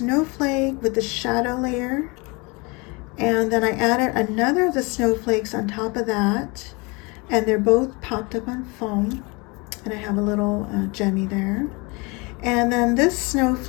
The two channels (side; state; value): right; quieter; 27.8 dB